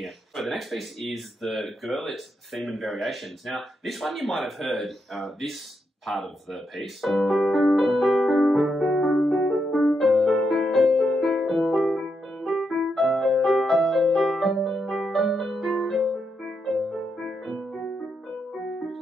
So the next piece is the Gurlitt Theme and Variations. Now, this one you might have heard, this part of the piece.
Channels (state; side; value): normal; both; correlation 0.82